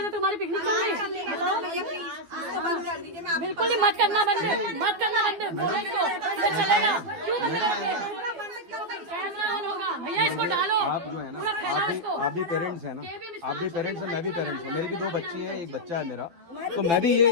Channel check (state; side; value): late; left; 12 ms